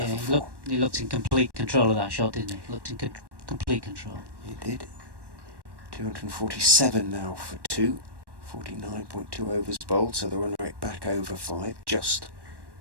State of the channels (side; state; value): left; late; 1.1 ms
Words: for 4. He looked in complete control of that shot, didn't he? Looked in complete control. He did. 247 now for 2. 49.2 overs bowled, so the run rate back over 5, just.